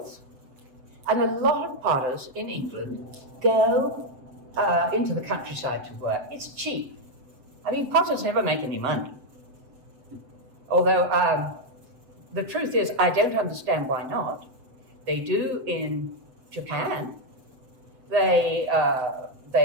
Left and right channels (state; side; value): late; left; 7.6 ms